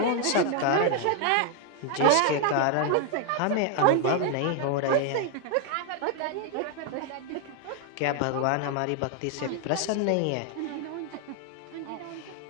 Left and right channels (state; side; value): different; both; correlation 0.00